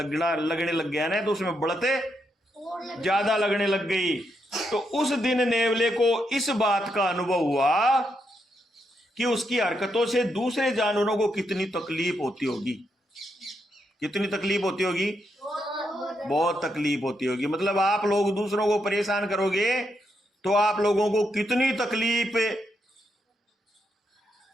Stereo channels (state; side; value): normal; both; correlation 0.81